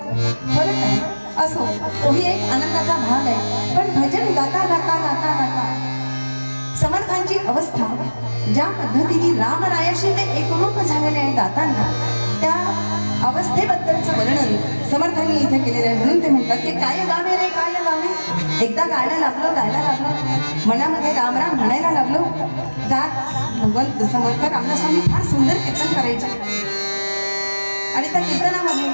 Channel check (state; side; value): inverted; both; correlation -1.00